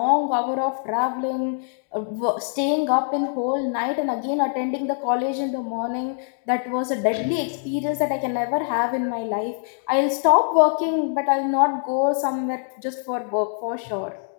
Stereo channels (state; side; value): silent; right; digital silence